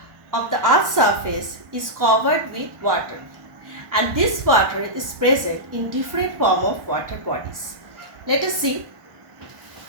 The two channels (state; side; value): late; left; 1.1 ms